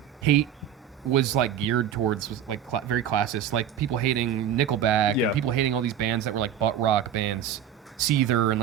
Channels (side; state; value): left; quieter; 9.1 dB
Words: hate was like geared towards like very classist, like people hating Nickelback and people hating all these bands that were like butt rock bands, Seether and